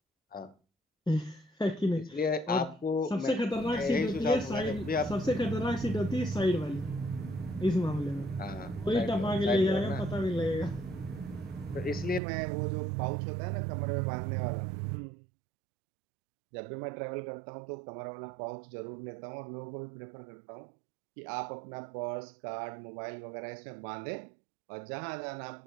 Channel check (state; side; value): drops out; left; at 12.2 s